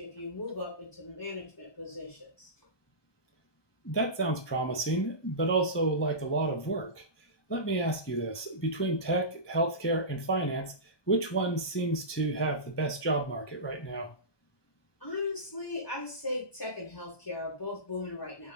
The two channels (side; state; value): right; late; 1.2 ms